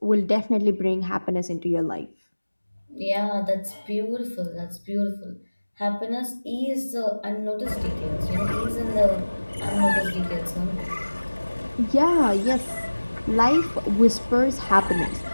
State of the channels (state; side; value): inverted; both; correlation -1.00